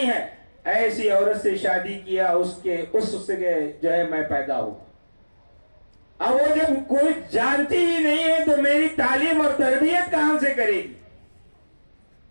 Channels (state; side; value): inverted; both; correlation -1.00